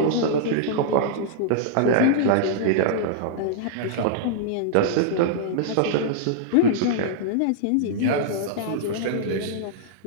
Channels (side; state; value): both; different; correlation -0.01